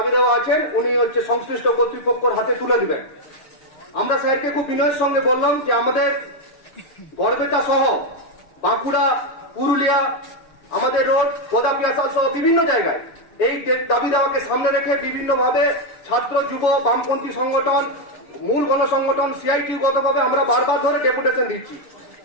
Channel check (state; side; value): late; right; 6.8 ms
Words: দেওয়া আছেন উনি সংশ্লিষ্ট কর্তৃপক্ষের হাতে তুলে দিবেন। আমরা স্যারকে খুব বিনয়ের সঙ্গে বললাম যে আমাদের গড়বেতা সহ বাঁকুড়া, পুরুলিয়া, আমাদের রোড, গোদাপিয়াসা সহ বিভিন্ন জায়গায় এই দাবি দেওয়াকে সামনে রেখে বিভিন্নভাবে ছাত্র, যুব, বামপন্থী সংগঠন, মূল গণসংগঠন, সিআইটি গতভাবে আমরা বারবার ধরে ডেপুটেশন দিচ্ছি